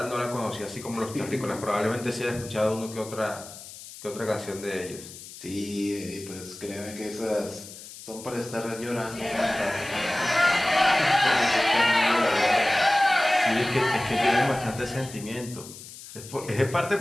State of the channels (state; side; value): noise; left; hiss, 15 dB below the sound